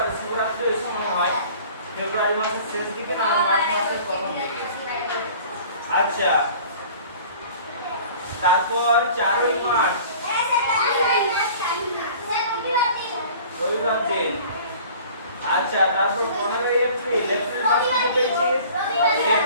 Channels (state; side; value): inverted; both; correlation -0.47